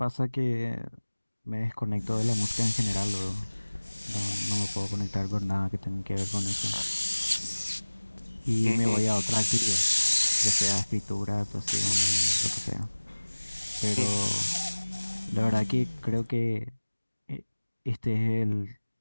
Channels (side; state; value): both; inverted; correlation -1.00